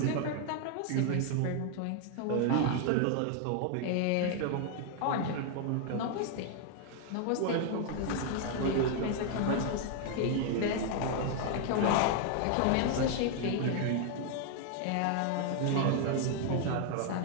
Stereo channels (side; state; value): both; different; correlation 0.00